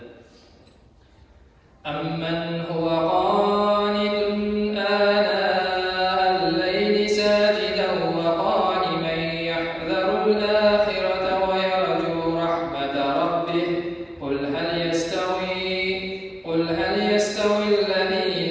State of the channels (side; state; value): both; identical; correlation 1.00